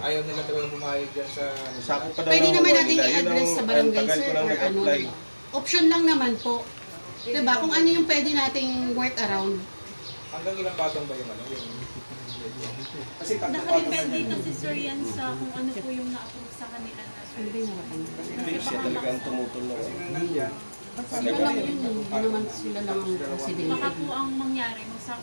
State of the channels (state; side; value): inverted; both; correlation -1.00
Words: ayaw nila talaga pumayag dyan sa... Sakop pa daw Pwede ng naman huwa natin nila. Yun i-address sa ang barangay tagal sir ko lang or ano. nag-apply. Diba? Option lang naman po. Diba? Kung ano yung pwede nating work around. Hanggang ilang patong ba yung ano? Kasi tatlong patong Nakadepende kasi sir yan sa kung ano po yung na-approve sa kanila na Ano ba yung harapan nila? Hindi siya talaga ang tumutol na. Sila lang yun. Hindi naman sila lang ang baka presidente. po ang mangyari,